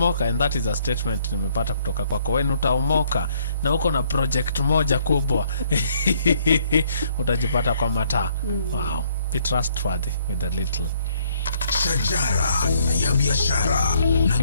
and that is a statement nimepata kutoka kwako, when utaomoka na uko na project moja kubwa, utajipata kwa mataa. Wow. Be trustworthy with a little. Shajara ya biashara na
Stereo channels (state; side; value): inverted; both; correlation -0.65